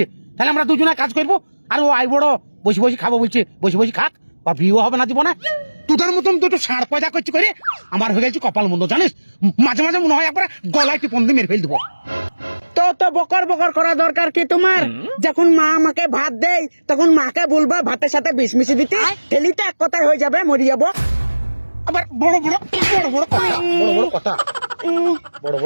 তাহলে আমরা দুজনে কাজ করবো। আর ও আই বড় বসে বসে খাবো বলছে, বসে বসে খাক, বা বিয়েও হবে না জীবনে। তোদের মতন দুটো ষাঁড় পয়দা করছি করে আমার হয়ে গেছে কপাল মন্দ, জানিস? মাঝে মাঝে মনে হয় একবার গলায় টিপন দিয়ে মেরে ফেল দেবো। তো বকর বকর করা দরকার কি তোমার? যখন মা আমাকে ভাত দেয় তখন মাকে বলবা ভাতের সাথে বিষ মিশিয়ে দিতে, ঠেলিতে এক কথায় হয়ে যাবে, মরে যাবো। আবার বড় বড় বড় বড় কথা, বড় বড় কথা, বড়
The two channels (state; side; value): inverted; both; correlation -1.00